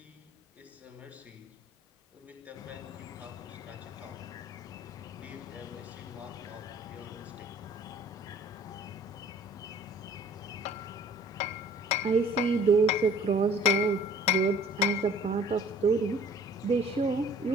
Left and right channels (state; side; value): normal; both; correlation 0.52